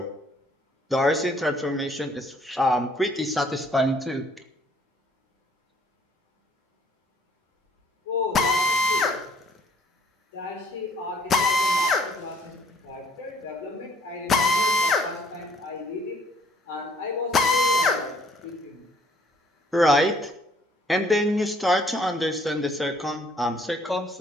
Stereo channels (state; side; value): normal; both; correlation 0.62